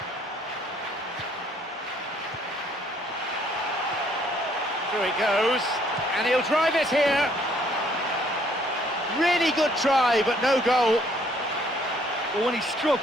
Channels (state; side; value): normal; both; correlation 0.64